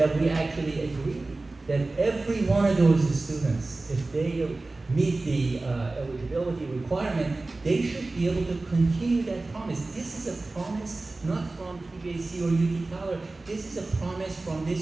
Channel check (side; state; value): left; quieter; 3.2 dB